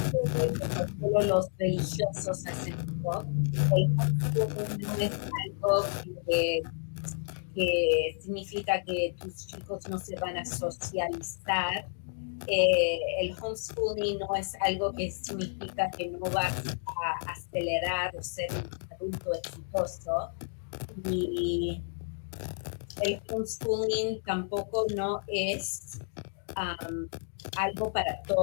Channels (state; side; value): silent; right; digital silence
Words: que solo los religiosos hacen. El homeschooling no es algo que significa que tus chicos no se van a socializar. El homeschooling no es algo que significa que no vas a acelerar o ser un adulto exitoso. Y el homeschooling tampoco no es algo para